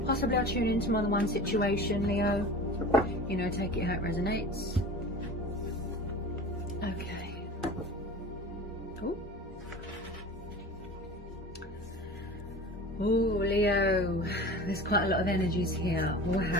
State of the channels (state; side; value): normal; both; correlation 0.36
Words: Possibly I'll tune into more than one situation, Leo. You know, take it how it resonates. Okay. Oh, Leo, there's quite a lot of energies here.